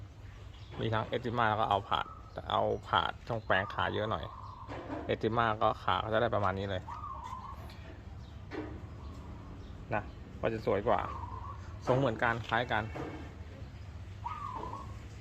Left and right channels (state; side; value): identical; both; correlation 1.00